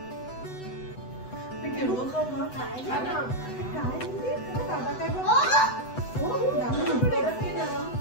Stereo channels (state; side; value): late; right; 8.0 ms